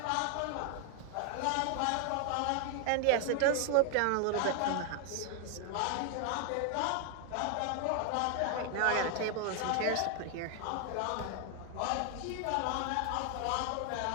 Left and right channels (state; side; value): different; both; correlation 0.00